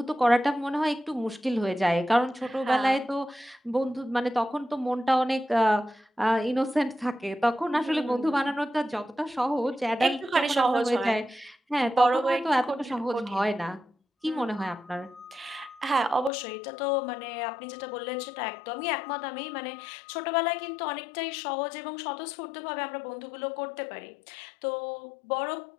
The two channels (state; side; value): drops out; right; at 16.3 s